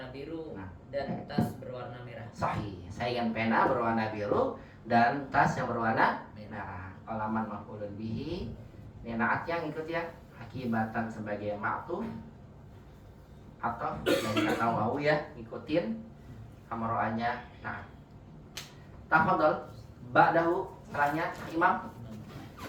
biru Nah. dan tas berwarna merah. Sahih. Saya ingin pena berwarna biru dan tas yang berwarna merah. Qalaman maf'ulun bihi. Ini naat yang ikut ya. Hakibatan sebagai ma'tuf atau dari kata wawu ya, ngikutin hamro'anya. Nah, tafadhol ba'dahu setelahnya Imam.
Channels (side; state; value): both; identical; correlation 1.00